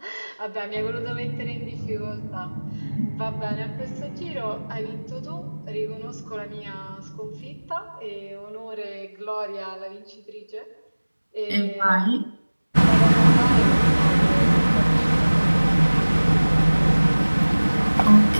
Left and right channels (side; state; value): both; inverted; correlation -1.00